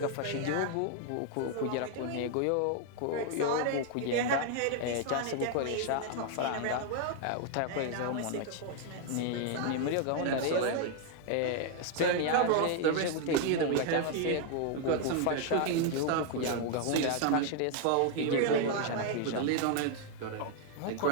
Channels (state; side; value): different; both; correlation 0.00